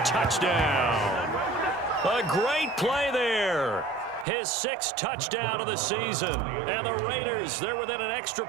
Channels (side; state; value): left; drops out; at 4.2 s